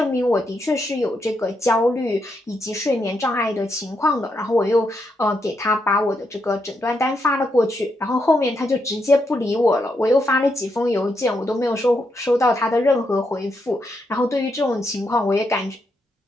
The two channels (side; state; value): both; normal; correlation 0.81